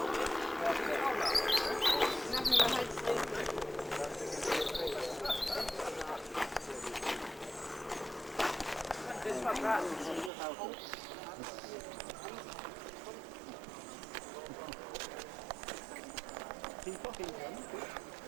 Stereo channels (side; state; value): left; drops out; at 10.3 s